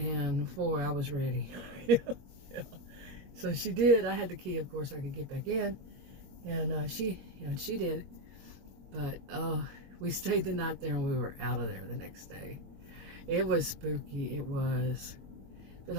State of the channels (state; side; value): late; left; 21 ms